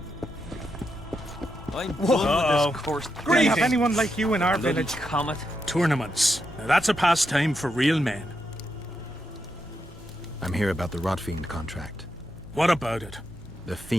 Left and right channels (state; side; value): normal; both; correlation 0.83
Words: I'm done with this course. Do we have anyone like you in our Bloody village? comet. Tournaments. Now that's a pastime for real men. I'm here about the Rotfiend contract. What about it? The